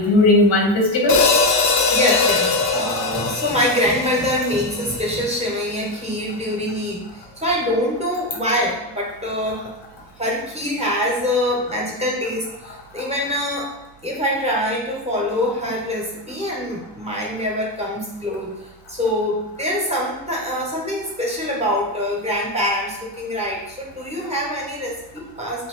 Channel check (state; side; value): noise; right; hum, 27 dB below the sound